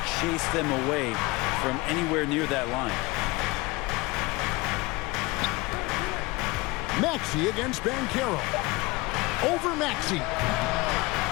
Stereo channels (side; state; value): right; quieter; 22.8 dB